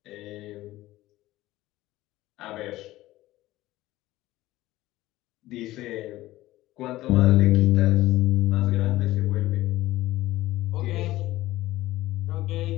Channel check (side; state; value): right; quieter; 16.6 dB